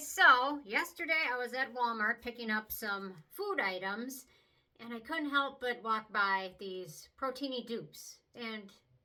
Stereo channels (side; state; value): both; identical; correlation 1.00